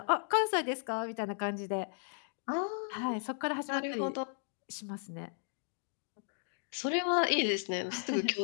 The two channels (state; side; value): silent; right; 54 dB below the other